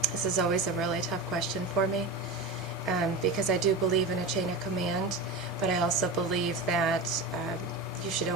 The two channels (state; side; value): quieter; left; 3.1 dB